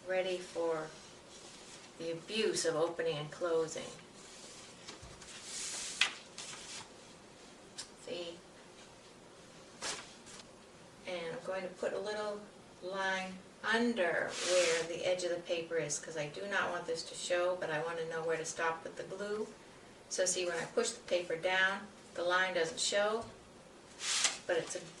ready for the abuse of opening and closing. See? And I'm going to put a little line under where the edge of the paper is, because I do not want this to show, but I want to know where to stop with the glue. So see, when I push the paper down, the line doesn't show, but it's a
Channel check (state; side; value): identical; both; correlation 1.00